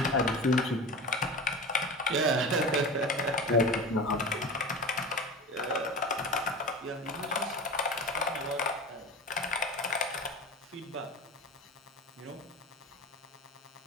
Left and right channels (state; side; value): normal; both; correlation 0.31